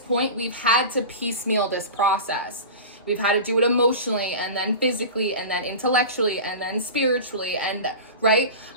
we've had to piecemeal this process We've had to do it emotionally, and then physically, and then intellectually, and then spiritually, and right?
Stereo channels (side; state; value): both; inverted; correlation -0.30